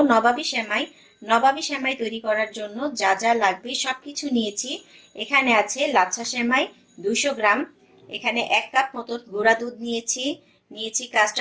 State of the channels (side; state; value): both; identical; correlation 1.00